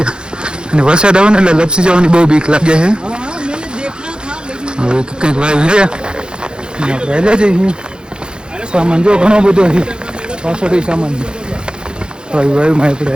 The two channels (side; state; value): left; late; 0.048 ms